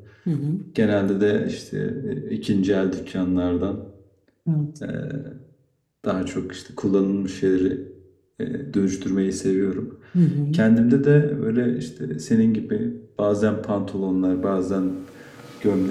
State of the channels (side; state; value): both; identical; correlation 1.00